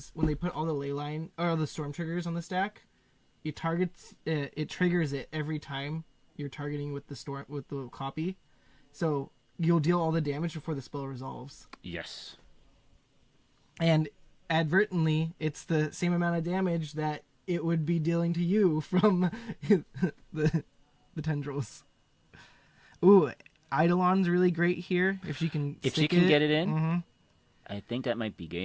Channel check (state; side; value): identical; both; correlation 1.00